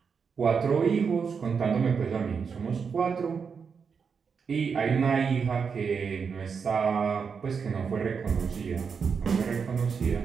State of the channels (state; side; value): quieter; left; 6.0 dB